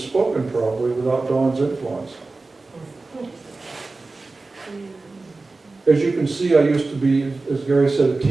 probably without Dawn's influence. As you can see, I used to be, as Gary said, a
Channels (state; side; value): quieter; left; 3.5 dB